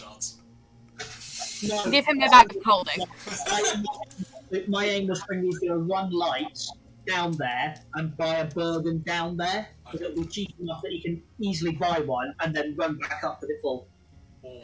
No, Give him the bag of colding. my aim was for you to run lights down there and buy a Bergen down there, because it'll be cheap enough that you can easily buy one and then run back up with it full. Or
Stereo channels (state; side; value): identical; both; correlation 1.00